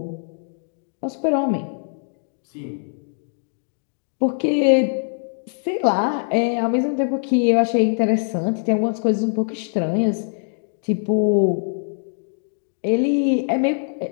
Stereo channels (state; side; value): silent; right; 64 dB below the other